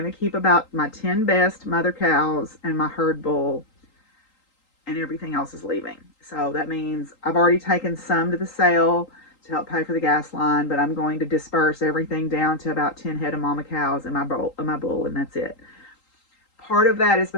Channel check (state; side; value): late; right; 3.8 ms